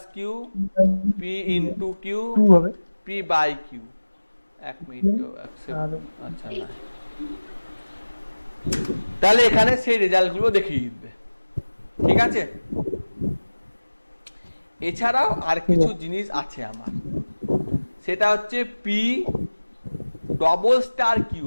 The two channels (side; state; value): both; inverted; correlation -1.00